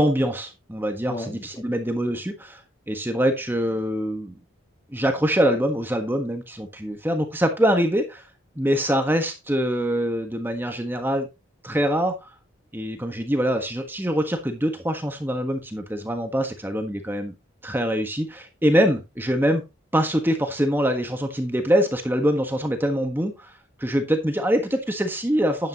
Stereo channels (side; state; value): both; normal; correlation 0.77